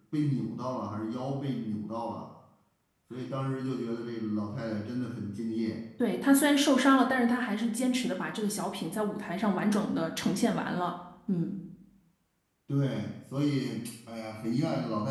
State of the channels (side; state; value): both; identical; correlation 1.00